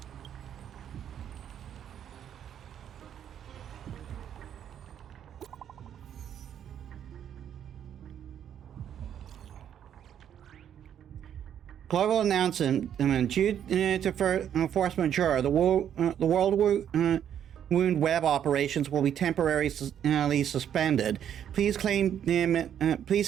Global announcement, due to force majeure, the World Wound Web operations will be temporarily suspended. Please please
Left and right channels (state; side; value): quieter; left; 9.5 dB